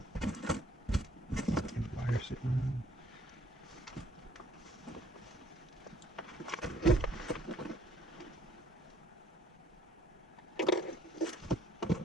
And wire sitting on.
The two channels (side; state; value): both; normal; correlation 0.62